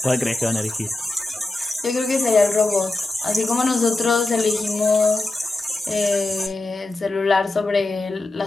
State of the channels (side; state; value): right; quieter; 3.1 dB